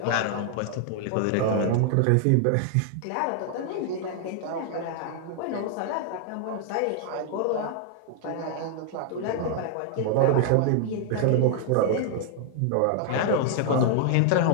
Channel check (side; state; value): both; different; correlation 0.00